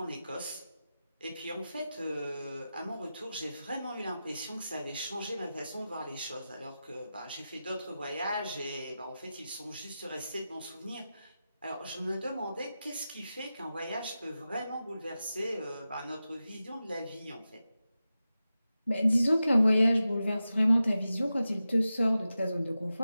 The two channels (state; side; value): inverted; both; correlation -0.93